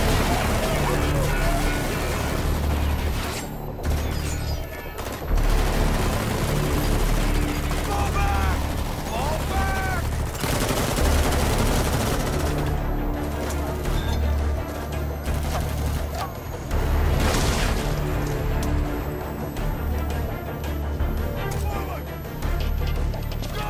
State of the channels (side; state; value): both; identical; correlation 1.00